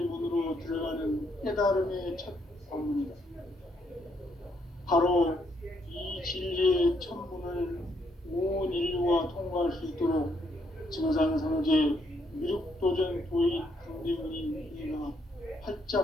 문으로 들어가는 깨달음의 첫 방문이다. 바로 이 진리의 첫 문을 온 인류가 통과할 수 있도록 증산상제 미륵도전 도의 강대원인 이가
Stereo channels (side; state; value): both; normal; correlation 0.73